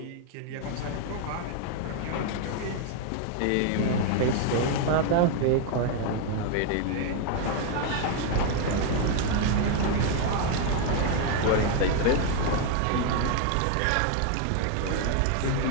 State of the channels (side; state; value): both; different; correlation 0.00